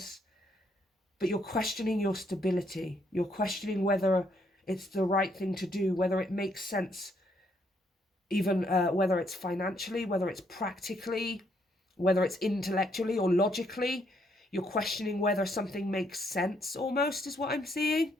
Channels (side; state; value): both; normal; correlation 0.72